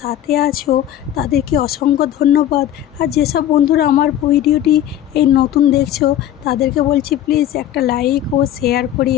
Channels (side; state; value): right; quieter; 11.6 dB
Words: সাথে আছো, তাদেরকে অসংখ্য ধন্যবাদ। আর যেসব বন্ধুরা আমার ভিডিওটি এই নতুন দেখছো, তাদেরকে বলছি প্লিজ একটা লাইক ও শেয়ার করে